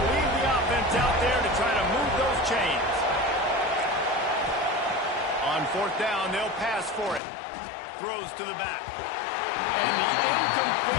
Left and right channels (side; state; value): right; drops out; at 7.2 s